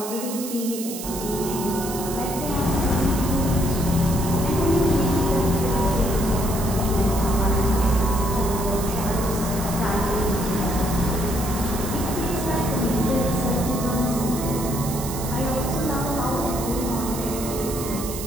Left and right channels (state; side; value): noise; right; hiss, 9 dB below the sound